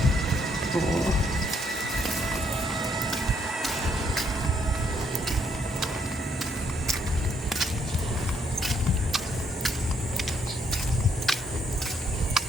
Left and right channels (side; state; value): both; normal; correlation 0.72